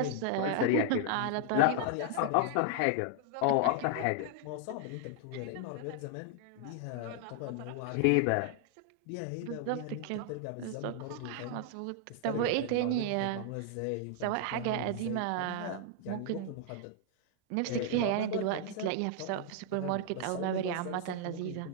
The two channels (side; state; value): both; different; correlation -0.01